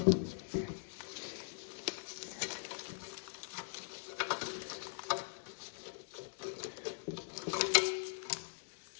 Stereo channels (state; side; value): silent; right; digital silence